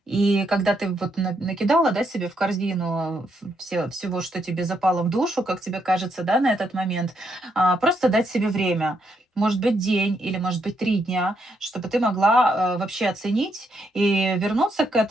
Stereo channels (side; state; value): both; normal; correlation 0.77